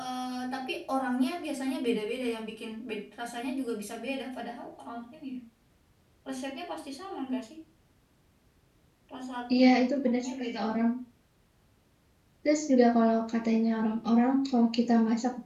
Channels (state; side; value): identical; both; correlation 1.00